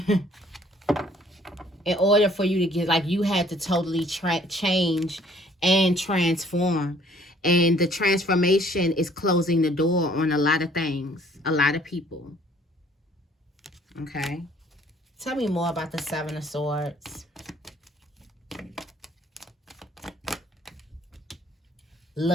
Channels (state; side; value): normal; both; correlation 0.59